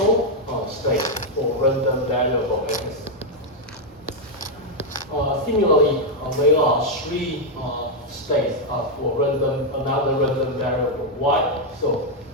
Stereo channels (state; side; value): normal; both; correlation 0.00